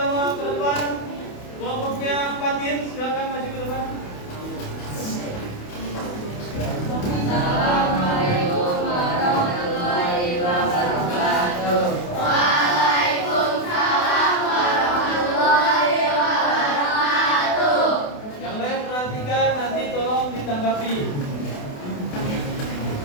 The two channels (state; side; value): late; right; 28 ms